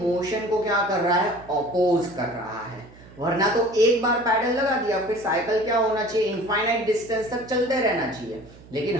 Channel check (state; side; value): noise; right; hum, 21 dB below the sound